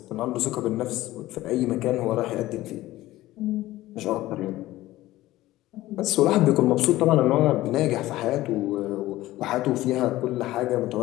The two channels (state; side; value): quieter; right; 16.5 dB